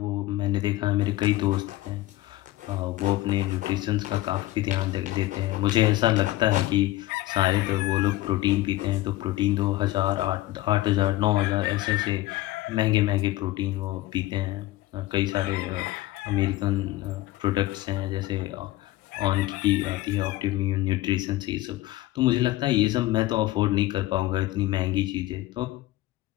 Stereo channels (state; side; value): quieter; right; 17.1 dB